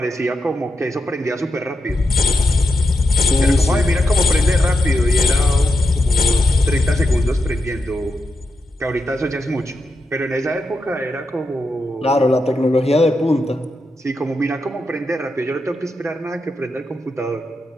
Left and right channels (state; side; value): normal; both; correlation 0.85